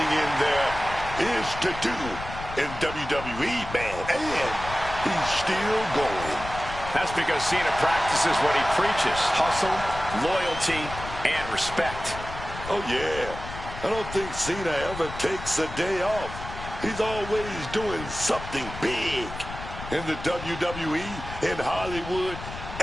in there is to do in WWE, man, and he's still going. That's because Cena practices what he preaches: hustle, loyalty, and respect. Oh, yeah. I don't think Cena ever takes a day off. He's always doing something big in the WWE, in Hollywood,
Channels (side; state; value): left; noise; rumble, 11 dB below the sound